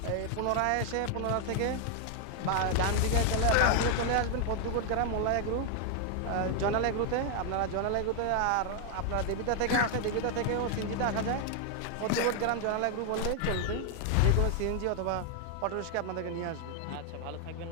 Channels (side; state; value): both; different; correlation 0.00